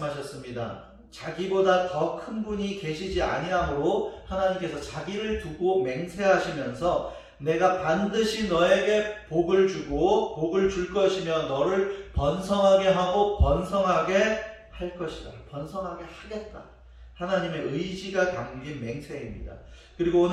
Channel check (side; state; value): both; identical; correlation 1.00